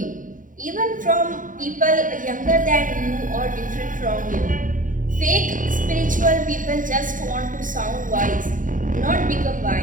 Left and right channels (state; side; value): late; left; 0.38 ms